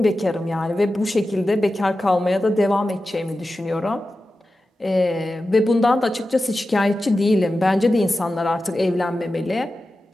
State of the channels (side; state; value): both; normal; correlation 0.93